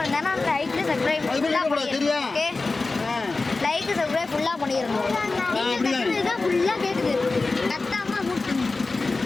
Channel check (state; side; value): quieter; right; 3.6 dB